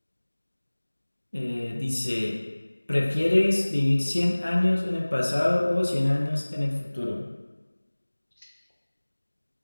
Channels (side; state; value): both; inverted; correlation -1.00